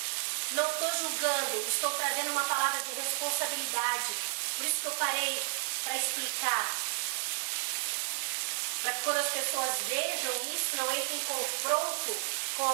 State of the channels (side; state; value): left; silent; 56 dB below the other